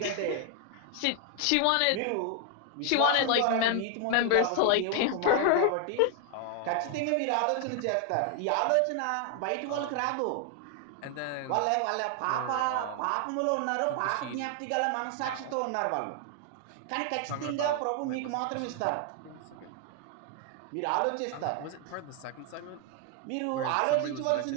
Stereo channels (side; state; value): both; different; correlation 0.00